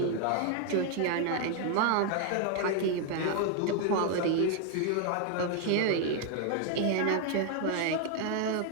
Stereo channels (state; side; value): different; both; correlation 0.00